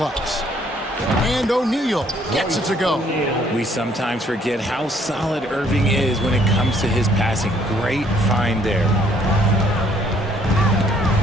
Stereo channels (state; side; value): normal; both; correlation 0.64